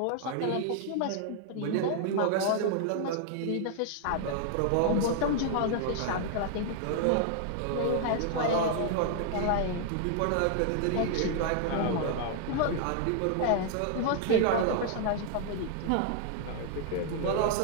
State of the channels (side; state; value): both; different; correlation 0.00